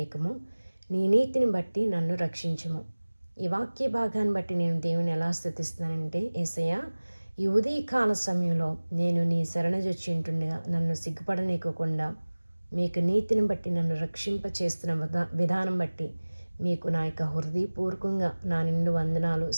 నీ నీతిని బట్టి నన్ను రక్షించుము. ఈ వాక్య భాగాన్ని బట్టి నేను దేవుని ఎలా స్తుతిస్తున్నానంటే, యేసయ్యా ఈ ఉదయకాల సమయంలో నేను నీ శరణజొచ్చి ఉంటుండగా నన్ను సిగ్గుపడనీయకుండా మీకు నీతిని బట్టి నన్ను రక్షింప చేస్తున్న విధానం బట్టి మీకు నా యొక్క హృదయపూర్వకంగా నా నిండు వందనాలు,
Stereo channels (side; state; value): both; inverted; correlation -1.00